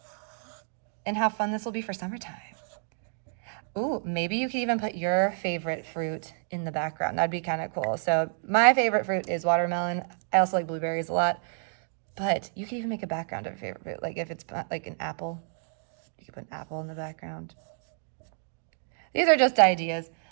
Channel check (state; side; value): silent; left; 58 dB below the other